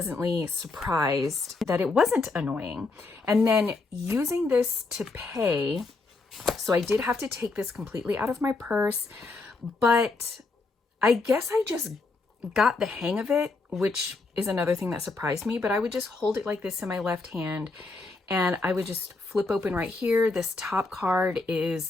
surprised that it wasn't annoying. And then using this to pay, so I did have to take this completely out of my purse, but I guess I just got the hang of it, which is another thing that surprised me, but I would just hold it like this in my left hand and I would just flip open right here. This top card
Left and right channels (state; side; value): quieter; right; 3.7 dB